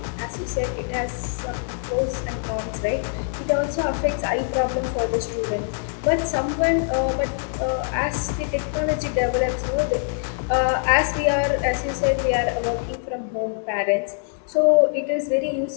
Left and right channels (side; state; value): right; silent; 63 dB below the other